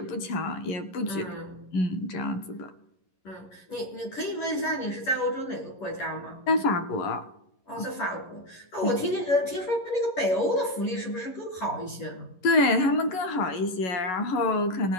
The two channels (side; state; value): right; late; 11 ms